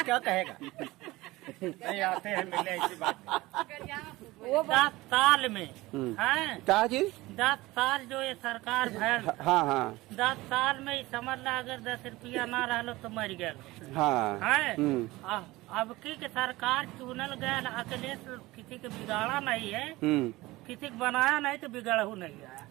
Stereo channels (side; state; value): left; quieter; 19.6 dB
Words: क्या कहेगा? नहीं आते हैं मिलने ऐसी बात वो 10 साल में है, क्या चीज? 10 साल जो ये सरकार भैल, हाँ 10 साल में ही समझ ला अगर 10 रुपया ना रहो तो मर गया हाँ। है। अब की के सरकार चुनल गया, अकेले किसी के बिगाड़ा नहीं है, किसी को बनाया नहीं तो बिगड़ू नहीं है।